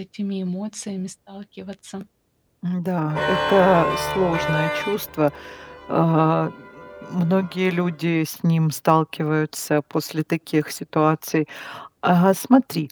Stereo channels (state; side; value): identical; both; correlation 1.00